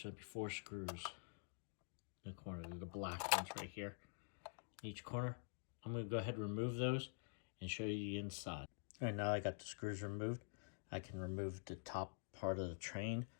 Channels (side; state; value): right; silent; digital silence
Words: be 4 screws in the corner. They're the black ones right here in each corner. I'm going to go ahead and remove those and show you the inside. All right, now I got the screws removed. I can remove the top part of the train.